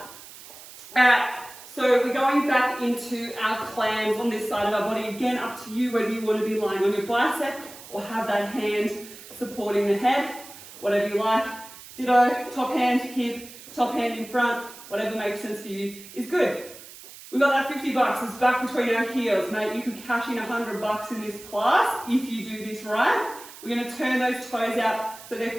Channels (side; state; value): right; noise; hiss, 17 dB below the sound